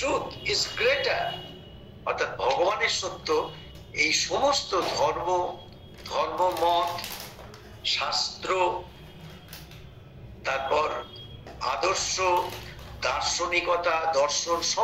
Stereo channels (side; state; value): both; identical; correlation 1.00